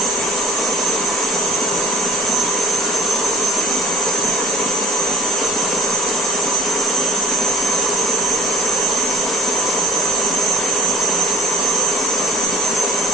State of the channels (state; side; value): normal; both; correlation 0.51